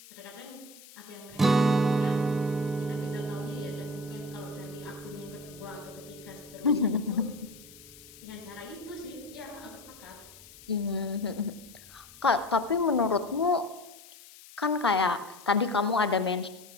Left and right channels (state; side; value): noise; left; hiss, 20 dB below the sound